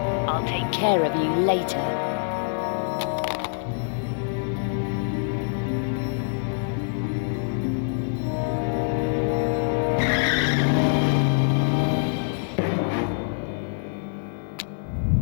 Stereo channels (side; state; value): right; silent; digital silence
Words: I'll take care of you later.